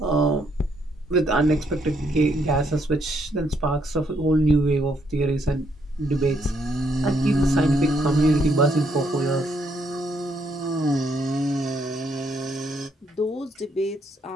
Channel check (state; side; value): normal; both; correlation 0.73